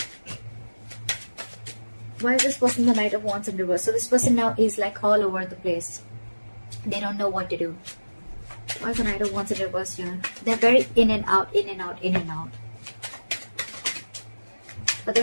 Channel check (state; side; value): inverted; both; correlation -1.00